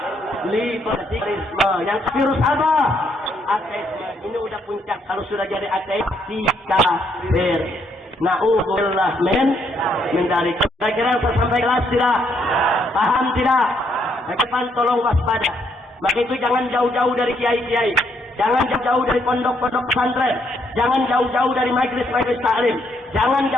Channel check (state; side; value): normal; both; correlation 0.72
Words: Liberalisme. Yang virus apa? Ateisme. Ini udah puncak. Kalau sudah jadi ateis, kafir. Na'udzubillah min dzalik. Kira-kira yang saya sampaikan jelas tidak? Paham tidak? Depan tolong waspada. Maka itu jangan jauh-jauh dari kiai-kiai, jangan jauh-jauh dari pondok-pondok pesantren, jangan jauh-jauh dari majelis-majelis taklim, jangan